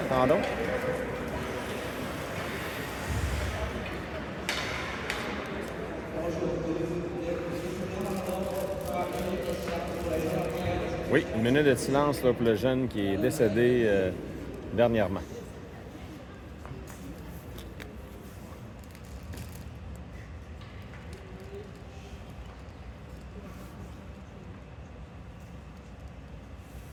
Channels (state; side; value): identical; both; correlation 1.00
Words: Attendons. Oui, une minute de silence là, pour le jeune qui est décédé dernièrement.